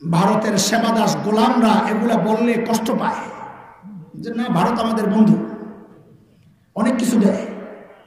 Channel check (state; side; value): identical; both; correlation 1.00